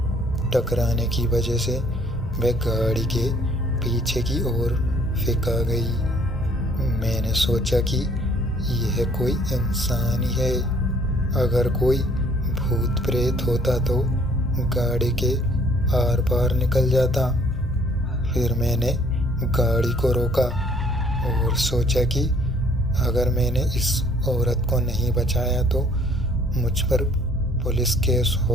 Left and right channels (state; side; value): normal; both; correlation 0.59